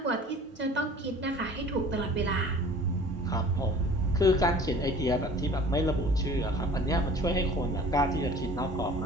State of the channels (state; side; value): normal; both; correlation 0.46